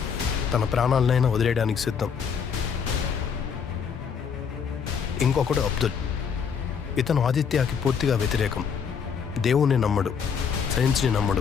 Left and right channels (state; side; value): quieter; right; 6.7 dB